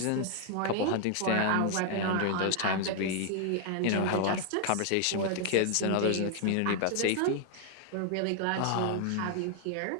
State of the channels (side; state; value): both; different; correlation 0.00